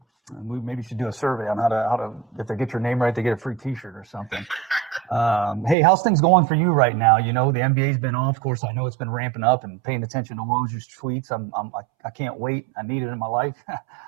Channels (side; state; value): left; drops out; at 5.8 s